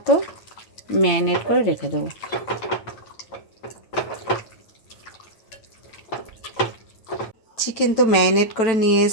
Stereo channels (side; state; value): right; late; 9.0 ms